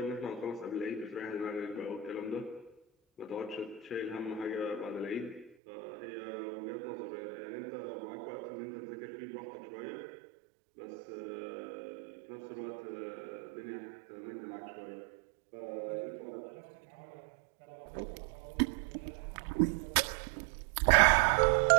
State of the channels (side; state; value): left; drops out; at 5.5 s